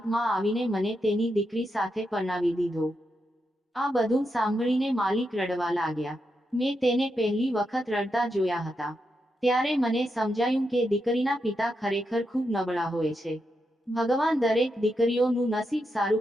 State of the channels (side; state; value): both; normal; correlation 0.85